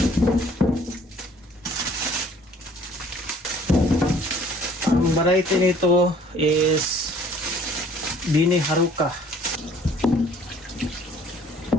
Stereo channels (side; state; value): both; normal; correlation 0.55